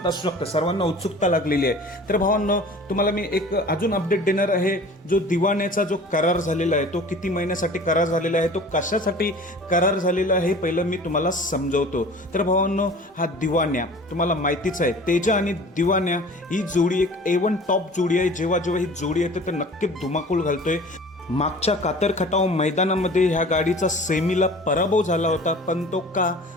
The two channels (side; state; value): both; normal; correlation 0.43